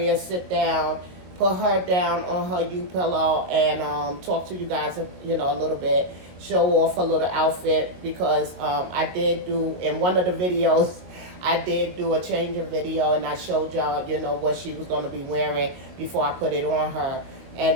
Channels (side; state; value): left; late; 22 ms